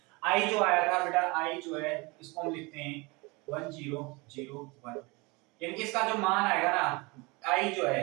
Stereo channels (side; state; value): left; quieter; 26.3 dB